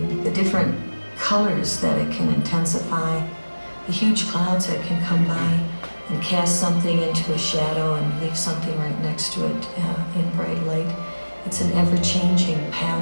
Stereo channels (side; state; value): both; inverted; correlation -1.00